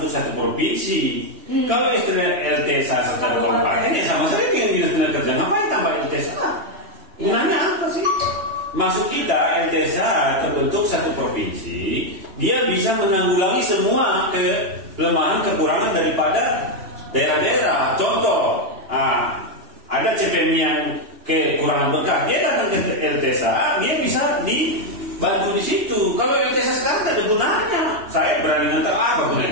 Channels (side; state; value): left; late; 3.1 ms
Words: satu provinsi. Kalau istilah LTSA secara kompeten ya sama saja dengan istilah kerja. Ngapain tambah LTSA? Gunanya apa sih? Maksud kita LTSA terbentuk satu provinsi, dia bisa menanggulangi semua kelemahan kekurangan daripada daerah-daerah. Contoh, ada CPM yang kekurangan berkat, dia datang ke LTSA, dia bisa dibantu di situ. Kalau LTSA sekarang tidak ada gunanya. Saya berani ngantar apa gunanya